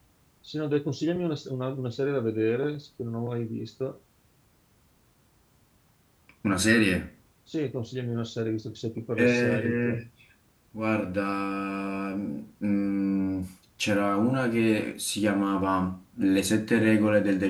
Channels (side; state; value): both; identical; correlation 1.00